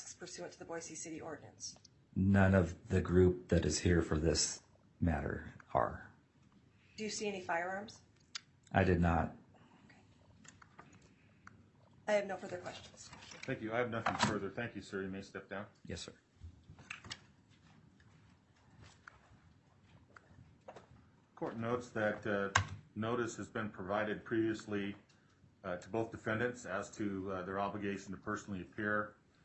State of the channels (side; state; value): both; identical; correlation 1.00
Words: pursuant to the Boise City ordinance? None of the group that is here for this matter are. Do you see any firearms? I did not. Okay. I have no further questions. Thank you. I have nothing further. Thank you, sir. You may step down. Yes, sir. Court notes that notice has been provided previously to both defendants as to their obligation to personally appear